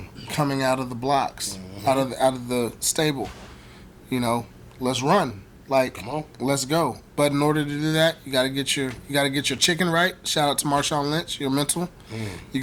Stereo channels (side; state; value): both; identical; correlation 1.00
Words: coming out of the blocks, out of the stable. Let's run. Come on, let's go. But in order to do that, you gotta get your chicken right. Shout out to Marshawn Lynch, your mental. You